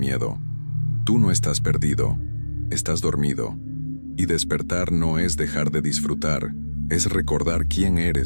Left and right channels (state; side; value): inverted; both; correlation -1.00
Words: Tú no estás perdido, estás dormido. Y despertar no es dejar de disfrutar, es recordar quién